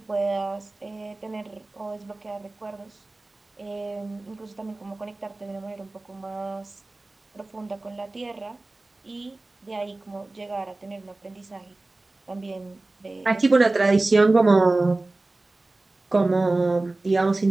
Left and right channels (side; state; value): left; quieter; 3.0 dB